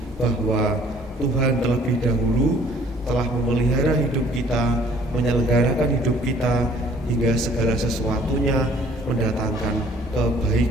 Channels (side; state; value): both; normal; correlation 0.57